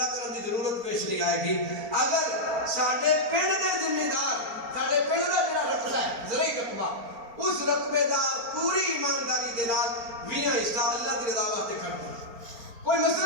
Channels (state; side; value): late; left; 4.4 ms